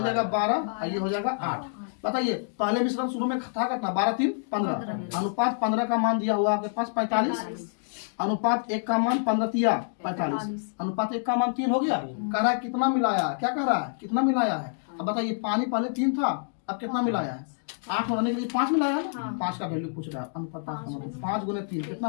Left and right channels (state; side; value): silent; right; digital silence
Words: जाएगा 12, और ये हो जाएगा 8। बताइए पहले मिश्रण शुरू में था कितना, 12 3 15, अनुपात 15 का मान दिया हुआ आपके पास 45, अनुपात 1 का मान 15 45, अनुपात 1 का मान 3 हो गया। कह रहा है कितना मिलाया है, क्या कह रहा है, कितना मिलाया है। अब बताइए पानी पहले 3 था, अब कितना मिलाया है, 8 होने के लिए 5 मिलाया है ना। 5 का वैल्यू पूछ रहा है, अनुपात 5 गुने 3 कितना